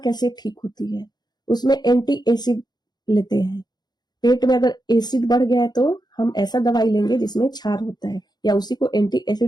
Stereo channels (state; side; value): late; right; 0.20 ms